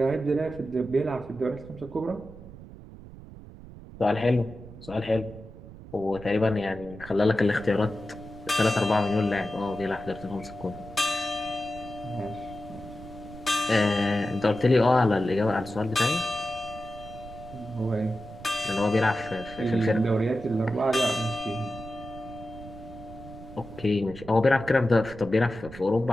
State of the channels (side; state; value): right; noise; rumble, 16 dB below the sound